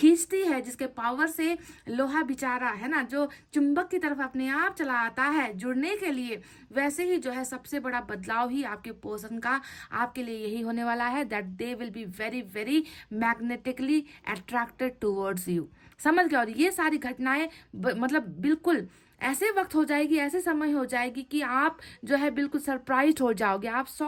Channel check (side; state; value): both; identical; correlation 1.00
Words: है, जिसके पावर से लोहा बेचारा है ना जो चुंबक की तरफ अपने आप चला आता है जुड़ने के लिए, वैसे ही जो है सबसे बड़ा बदलाव ही आपके पर्सन का आपके लिए यही होने वाला है, that they will be very very magnetically attracted towards you. समझ गए? और ये सारी घटनाएं मतलब बिल्कुल ऐसे वक्त हो जाएगी, ऐसे समय हो जाएगी कि आप जो है बिल्कुल सरप्राइज हो जाओगे, आप